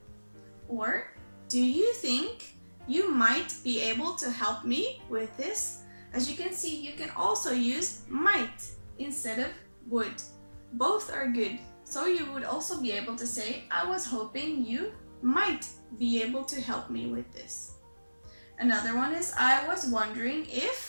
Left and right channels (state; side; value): inverted; both; correlation -1.00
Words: Or, do you think you might be able to help me with this? As you can see, you can also use might instead of would. Both are good. So you would also be able to say, I was hoping you might be able to help me with this. Another one is, I was wondering